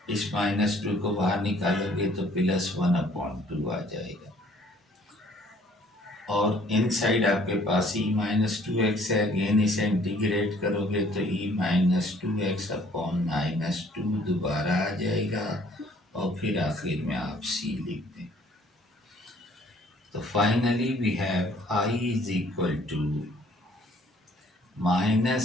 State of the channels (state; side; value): normal; both; correlation 0.59